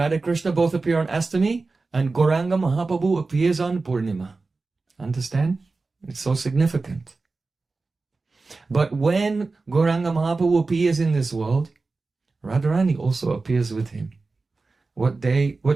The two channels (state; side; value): quieter; left; 3.8 dB